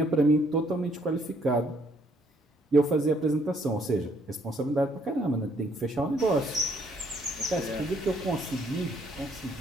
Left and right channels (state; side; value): normal; both; correlation 0.67